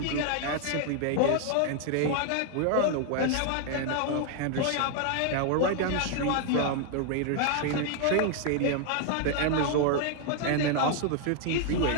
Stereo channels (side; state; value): both; different; correlation 0.00